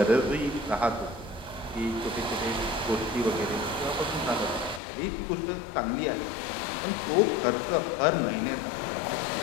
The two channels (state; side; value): drops out; right; at 4.8 s